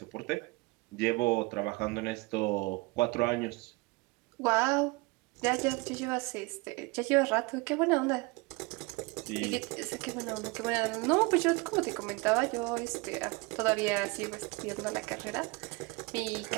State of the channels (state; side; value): quieter; left; 25.8 dB